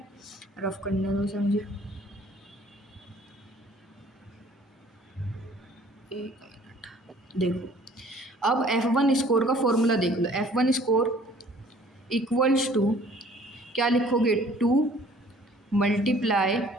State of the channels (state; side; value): normal; both; correlation 0.54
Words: रफ करने दो समझे, एक मिनट देखो। अब F1 स्कोर का फॉर्मूला देख लो। F1 स्कोर इक्वल्स टू क्या लिखोगे, 2 मल्टीप्लाई